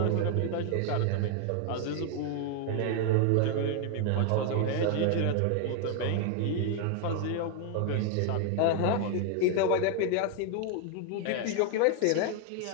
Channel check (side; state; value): both; different; correlation 0.01